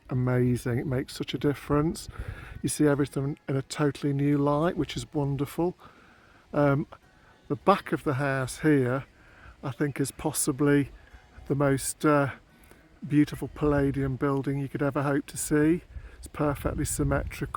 amazing. It makes such a difference. You see everything in a totally new light, which is wonderful. The back of the house here, I think, is possibly the most beautiful Palladian building you could ever hope to see. It's perfectly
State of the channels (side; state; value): both; identical; correlation 1.00